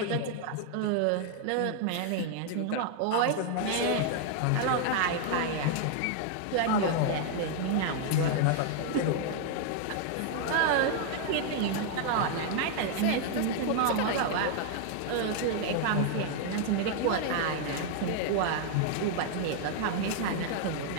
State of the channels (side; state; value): both; different; correlation 0.00